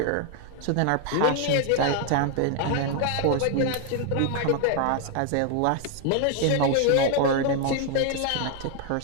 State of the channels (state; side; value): different; both; correlation 0.00